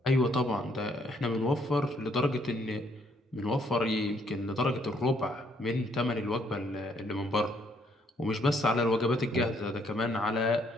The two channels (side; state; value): both; normal; correlation 0.69